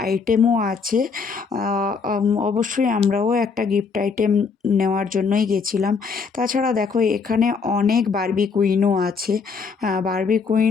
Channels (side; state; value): right; quieter; 5.3 dB